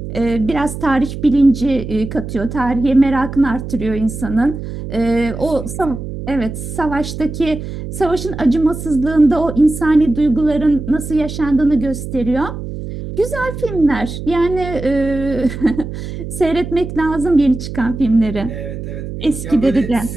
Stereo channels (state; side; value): noise; right; hum, 8 dB below the sound